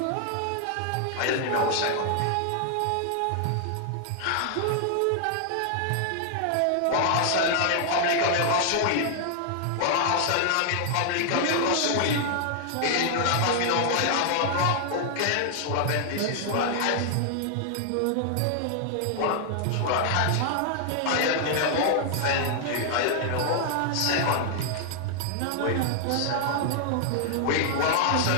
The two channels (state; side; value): different; both; correlation -0.01